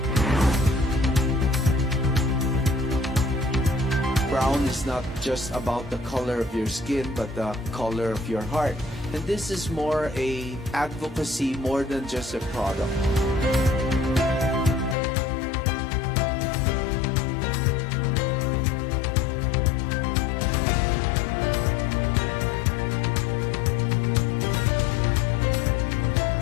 brown is not just about the color of your skin, but the color of your heart. And this is more a advocacy more than just a product.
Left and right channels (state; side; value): drops out; right; at 15.0 s